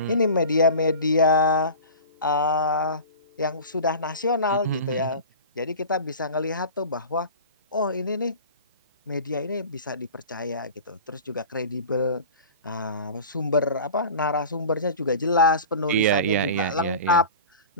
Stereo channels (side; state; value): both; inverted; correlation -0.37